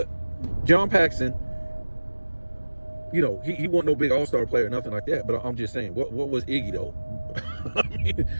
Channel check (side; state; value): both; inverted; correlation -1.00